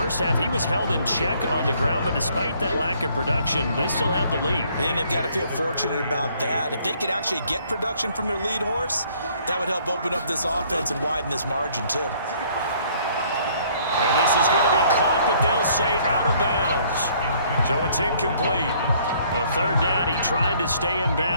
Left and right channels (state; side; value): inverted; both; correlation -0.62